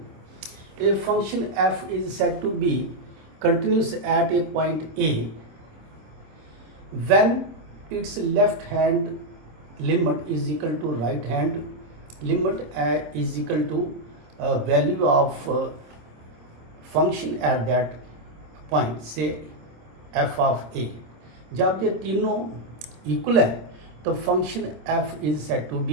a function f is said to be continuous at a point A when its left hand limit is equal to right hand limit is equal to value of function at that point, say f of a. जब ये तीनों इक्वल है तो function f is said to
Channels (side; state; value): left; late; 26 ms